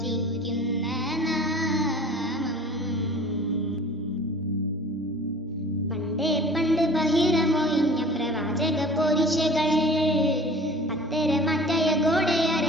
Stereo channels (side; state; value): both; normal; correlation 0.44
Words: നാമം പണ്ട് ബഹിരമൊഴിഞ്ഞ പ്രവാചക പോരിശകൾ പത്തരമാറ്റായ